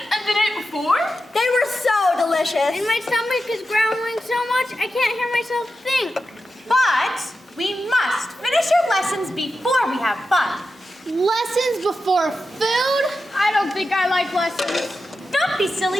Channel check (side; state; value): both; normal; correlation 0.90